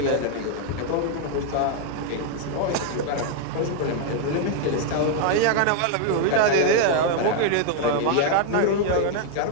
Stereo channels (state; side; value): different; both; correlation 0.00